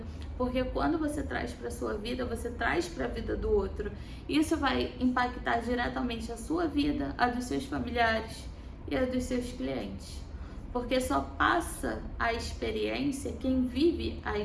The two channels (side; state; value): both; identical; correlation 1.00